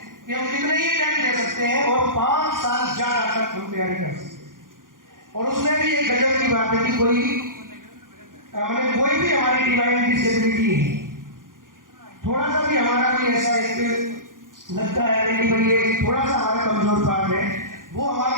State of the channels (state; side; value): late; left; 0.89 ms